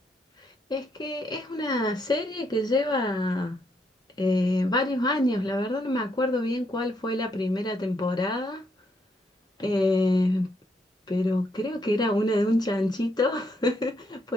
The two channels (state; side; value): normal; both; correlation 0.75